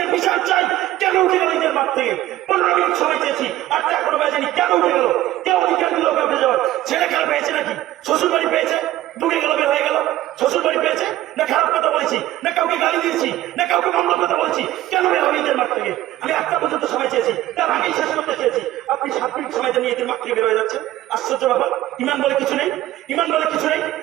বিচার চাই। কেন উঠে গেল ঈদের মাঠ থেকে? 15 মিনিট সময় চেয়েছি, 8টা এখনো বাজেনি, কেন উঠে গেল? কেউ অধিকার দিল উঠে যাওয়ার? ছেলে খেলা পেয়েছে নাকি? শ্বশুর বাড়ি পেয়েছে, ঢুকে গেল, বের হয়ে গেল। শ্বশুর বাড়ি পেয়েছে না খারাপ কথা বলেছি, না কাউকে গালি দিয়েছি, না কাউকে মন্দ কথা বলছি, কেন বের হবে ঈদের মাঠ থেকে? আমি 1টা পর্যন্ত সময় চেয়েছি, তার আগেই শেষ করতে চেয়েছি, আপনি 7 মিনিট সময় নিয়ে ঈদের মাঠ থেকে বের হয়ে যাচ্ছেন। আশ্চর্য ব্যাপার। ইমান বলে কিছু নেই, ইমান বলে কিছু নেই।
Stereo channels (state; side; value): quieter; left; 14.9 dB